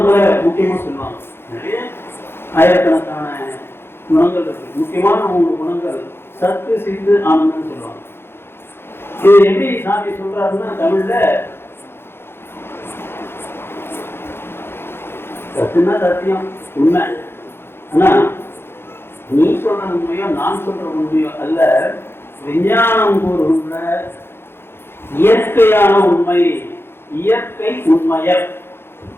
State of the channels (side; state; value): right; late; 0.11 ms